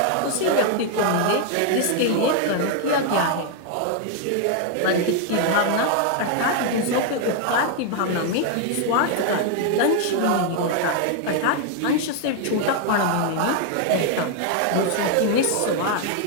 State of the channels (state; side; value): different; both; correlation 0.00